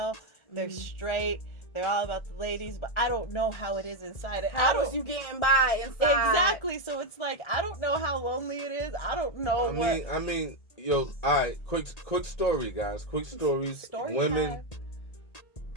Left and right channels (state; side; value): late; right; 1.4 ms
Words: they're straight, they're all about the ladies, but I don't know how it is inside. How was you getting by inside? Exactly. So it's like I don't know how lonely it is. I don't know. I mean, yo, all right. Quick story, guys. Quick stories. Story Women, time.